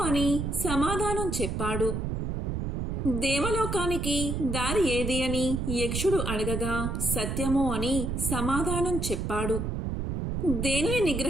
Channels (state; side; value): noise; right; rumble, 2 dB below the sound